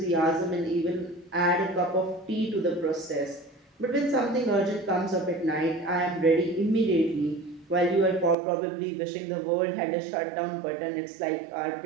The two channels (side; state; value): left; drops out; at 8.3 s